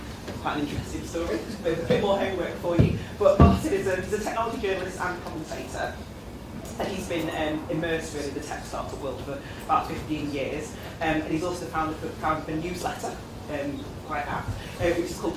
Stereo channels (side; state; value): both; identical; correlation 1.00